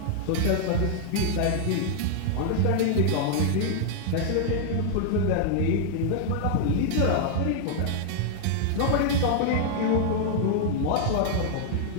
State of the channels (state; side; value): different; both; correlation -0.01